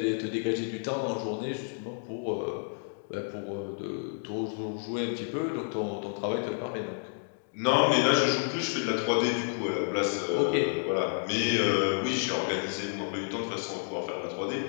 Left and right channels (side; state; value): right; silent; digital silence